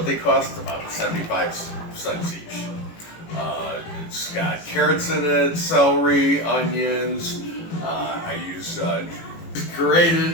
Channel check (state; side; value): late; right; 18 ms